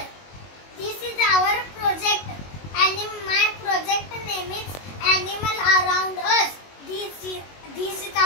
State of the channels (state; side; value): late; right; 22 ms